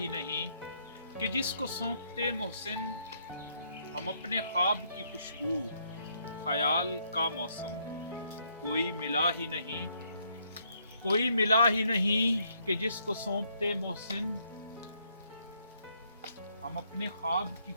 नहीं कि जिसको सौंपते मोहसिन। हम अपने ख्वाब की खुशबू ख्याल का मौसम। कोई मिला ही नहीं, कोई मिला ही नहीं कि जिसको सौंपते मोहसिन। हम अपने ख्वाब की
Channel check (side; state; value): both; inverted; correlation -0.72